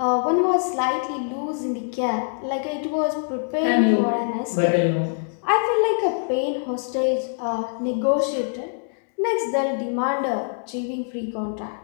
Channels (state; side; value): silent; right; digital silence